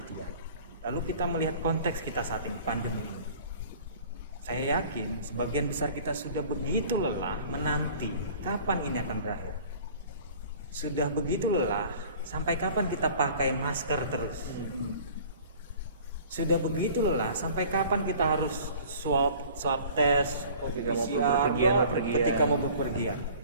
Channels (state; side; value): inverted; both; correlation -0.48